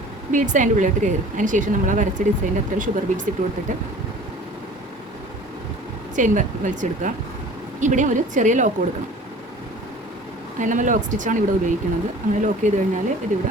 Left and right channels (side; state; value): both; normal; correlation 0.45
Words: ബീഡ്സ് അതിൻ്റെ ഉള്ളിലോട്ട് കയറും. അതിന് ശേഷം നമ്മൾ ആ വരച്ച ഡിസൈൻ്റെ അത്ര ഷുഗർ ബീഡ്സ് ഇട്ട് കൊടുത്തിട്ട് ചെയിൻ വലിച്ചെടുക്കുക. ഇവിടെ ഒരു ചെറിയ ലോക്ക് കൊടുക്കണം. അതിന് നമ്മൾ ലോക്ക് സ്റ്റിച്ചാണ് ഇവിടെ ഉപയോഗിക്കുന്നത്. അങ്ങനെ ലോക്ക് ചെയ്ത് കഴിഞ്ഞാൽ